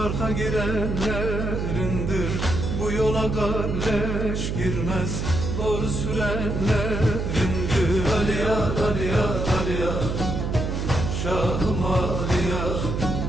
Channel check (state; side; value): noise; right; hum, 2 dB below the sound